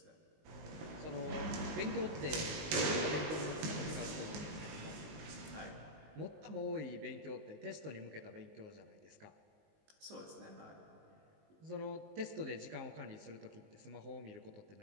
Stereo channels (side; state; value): left; late; 19 ms